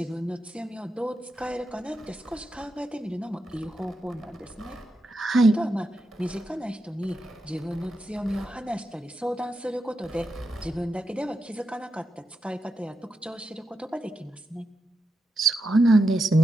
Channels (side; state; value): both; normal; correlation 0.86